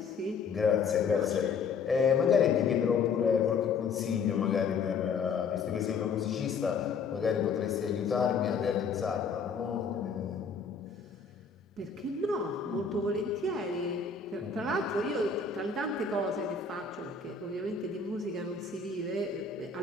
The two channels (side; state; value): right; quieter; 5.4 dB